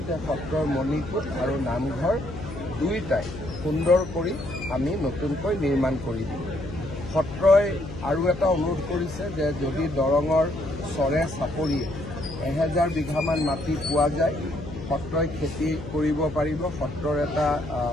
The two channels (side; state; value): left; noise; hum, 11 dB below the sound